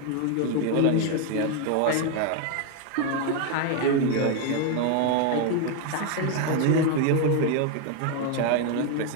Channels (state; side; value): different; both; correlation 0.01